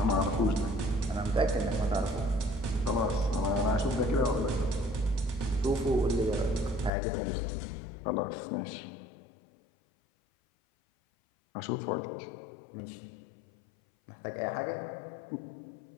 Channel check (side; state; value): right; drops out; at 6.9 s